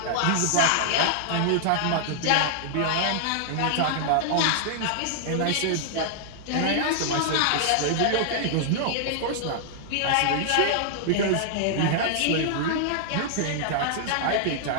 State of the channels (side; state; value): both; different; correlation -0.01